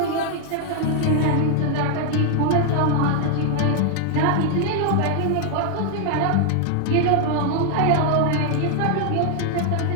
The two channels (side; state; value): both; different; correlation 0.00